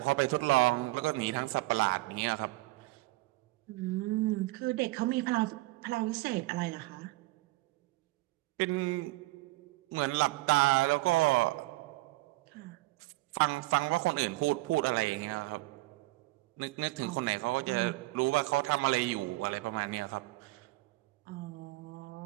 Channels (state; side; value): quieter; left; 20.4 dB